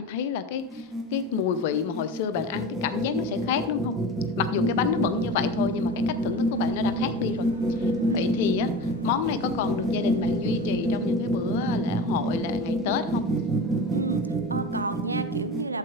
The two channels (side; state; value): both; normal; correlation 0.31